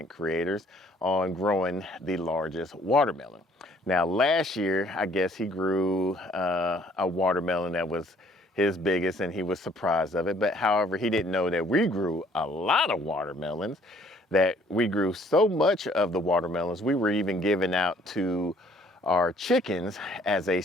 creators on growing the largest watermelon. Now last year, I guess he grew a watermelon that was his biggest and he was surprised of it. But however, he didn't know that we grew a lot of watermelons, that we grew so much of the watermelons, we were even giving out to our chickens as a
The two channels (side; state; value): both; normal; correlation 0.60